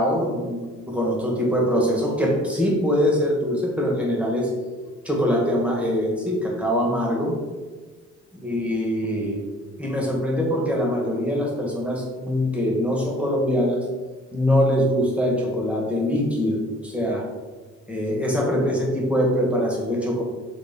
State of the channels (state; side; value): normal; both; correlation 0.53